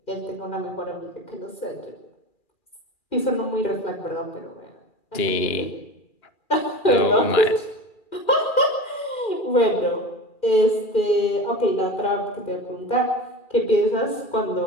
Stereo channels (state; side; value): late; right; 2.4 ms